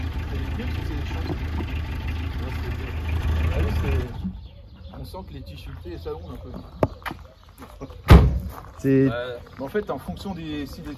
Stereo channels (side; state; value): both; identical; correlation 1.00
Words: On sent que les tissus et ça gonfle un peu. C'est. En fait, en fonction si les